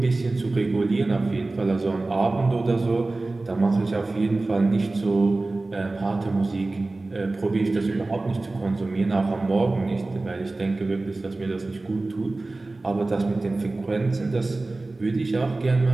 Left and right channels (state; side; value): quieter; left; 3.2 dB